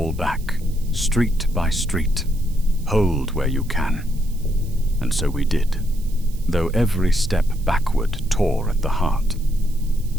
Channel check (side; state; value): right; noise; hiss, 23 dB below the sound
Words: back, street by street. Hold where you can. And so we did, though every step backward tore at the heart.